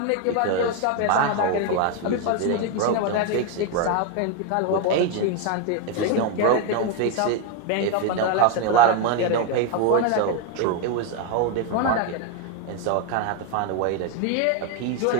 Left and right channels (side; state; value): both; different; correlation 0.01